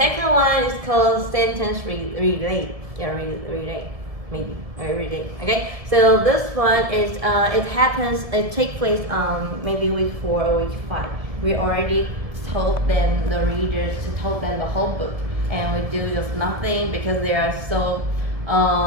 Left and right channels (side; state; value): left; late; 1.8 ms